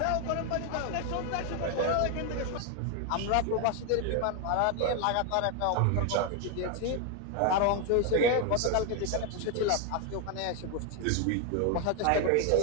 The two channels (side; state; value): both; different; correlation 0.01